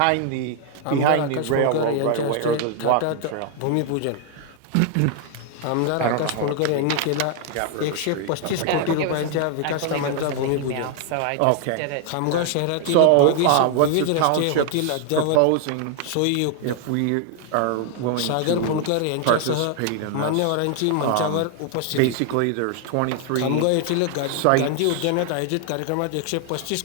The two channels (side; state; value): both; different; correlation 0.00